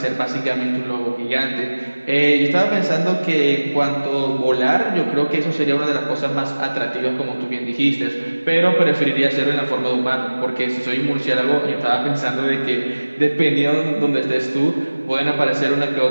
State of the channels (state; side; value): inverted; both; correlation -1.00